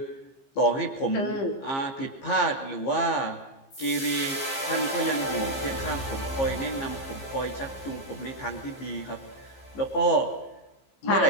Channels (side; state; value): right; late; 15 ms